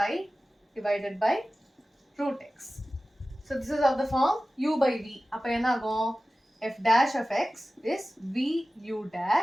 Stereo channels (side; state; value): both; normal; correlation 0.95